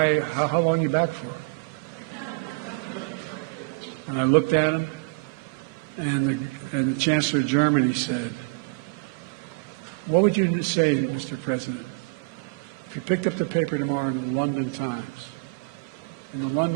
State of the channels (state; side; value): quieter; left; 32.0 dB